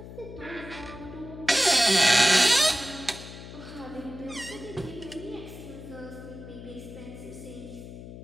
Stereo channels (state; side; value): noise; left; hum, 13 dB below the sound